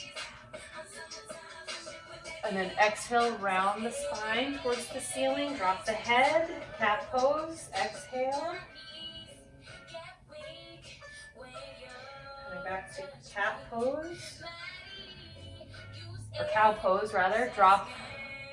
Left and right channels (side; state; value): both; identical; correlation 1.00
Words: And then exhale, round the spine towards the ceiling, drop the head, cat pose, exhale. Coming back to cat pose, or cow pose rather, drop